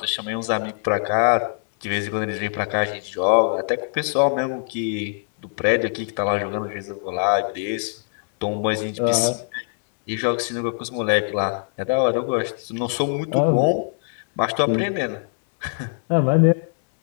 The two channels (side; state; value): right; silent; digital silence